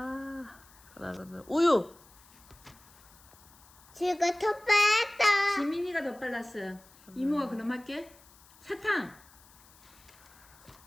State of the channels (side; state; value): left; noise; hiss, 25 dB below the sound